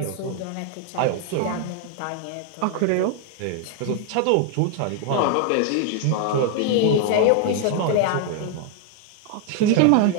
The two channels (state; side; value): different; both; correlation 0.00